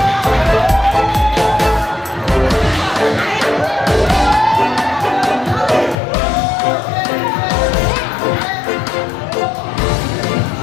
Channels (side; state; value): right; drops out; at 6.0 s